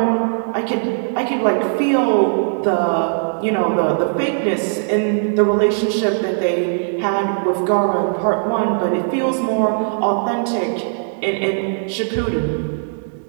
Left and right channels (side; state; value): left; silent; digital silence